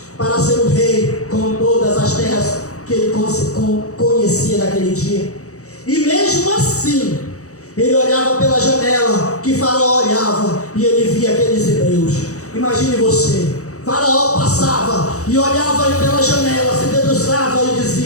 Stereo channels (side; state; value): right; late; 0.65 ms